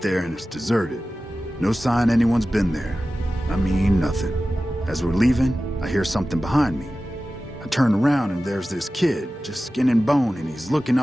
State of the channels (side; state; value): both; normal; correlation 0.95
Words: and it's deserted. No sign anyone's been there. I mean, nothing. As we're leaving, I hear something behind me. I turn around and there's this kid, just skin and bone, and he's looking